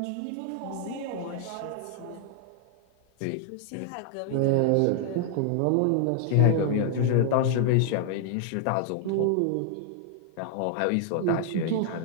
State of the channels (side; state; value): both; different; correlation 0.00